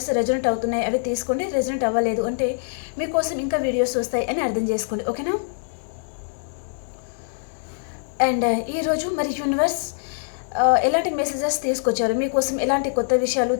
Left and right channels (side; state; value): right; silent; digital silence